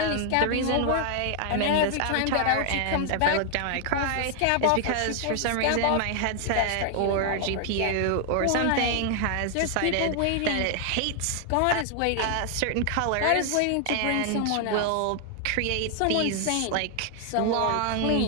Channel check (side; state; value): both; different; correlation 0.00